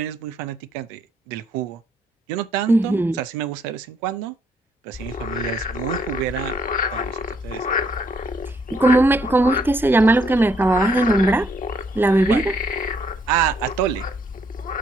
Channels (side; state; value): both; normal; correlation 0.70